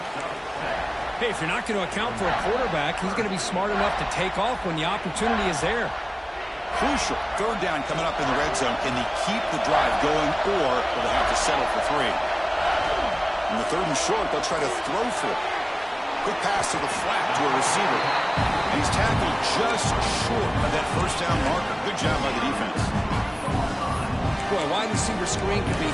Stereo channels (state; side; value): identical; both; correlation 1.00